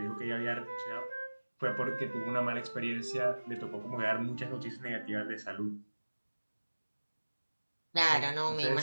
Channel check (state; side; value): inverted; both; correlation -1.00